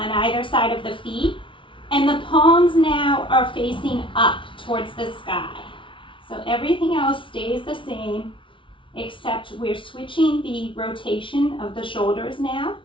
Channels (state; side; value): late; right; 0.25 ms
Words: either side of the feet. And the palms now are facing up towards the sky. So everything else stays the same except we're switching the rotation of the shoulders now